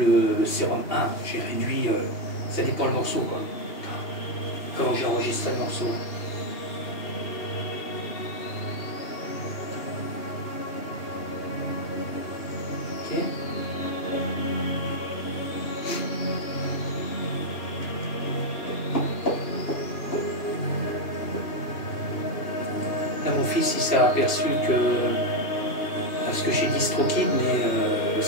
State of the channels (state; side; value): late; right; 2.8 ms